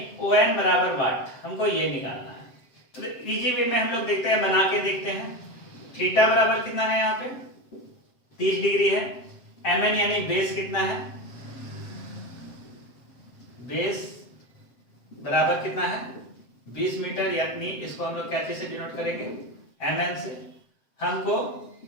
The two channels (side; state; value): right; late; 7.7 ms